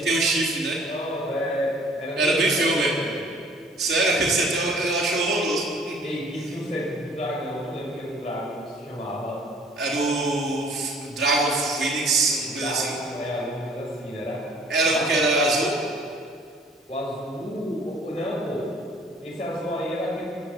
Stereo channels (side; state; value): both; normal; correlation 0.54